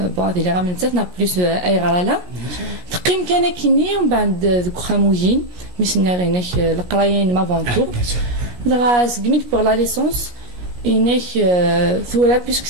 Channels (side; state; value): left; late; 17 ms